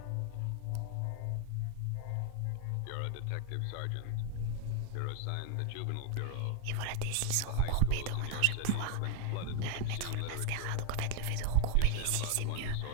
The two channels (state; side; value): different; both; correlation 0.00